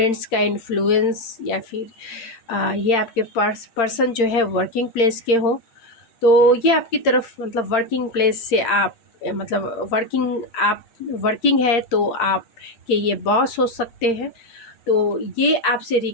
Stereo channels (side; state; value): right; late; 8.7 ms